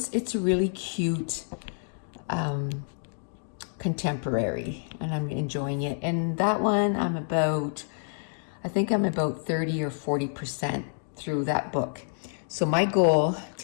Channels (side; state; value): right; silent; digital silence